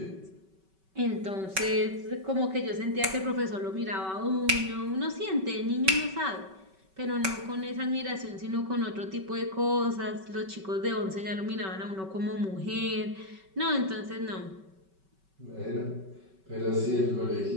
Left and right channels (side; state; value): left; late; 5.3 ms